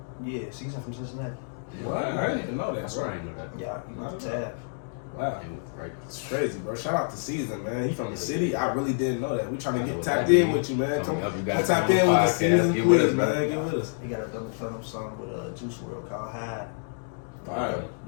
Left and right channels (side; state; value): right; silent; digital silence